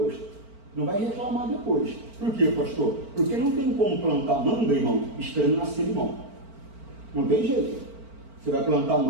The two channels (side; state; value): left; late; 4.4 ms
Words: não vai reclamar depois. Por quê, pastor? Porque não tem como plantar manga, irmão, esperando nascer limão. Não tem jeito. Você vai plantar